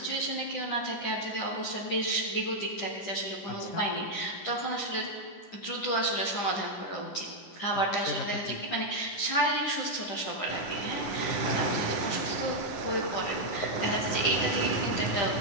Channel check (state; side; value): late; right; 10 ms